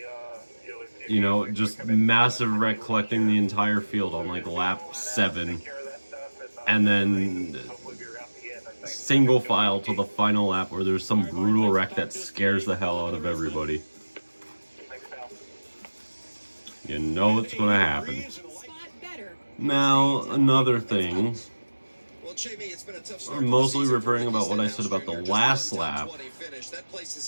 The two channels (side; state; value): both; inverted; correlation -1.00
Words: You know, just massive wreck collecting the entire field on like lap 7. And then single file to the final lap where there's some brutal wreck that scares the hell out of everybody. You know it's going to happen. Now, another thing. I'm mostly referring about what I said about the last lap.